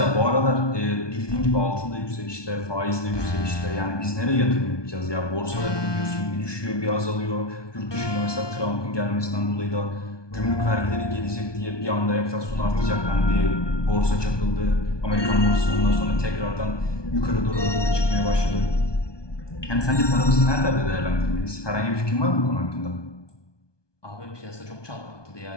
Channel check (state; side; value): late; right; 1.2 ms